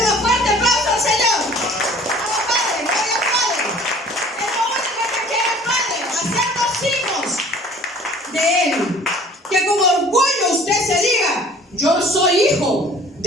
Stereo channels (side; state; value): both; normal; correlation 0.50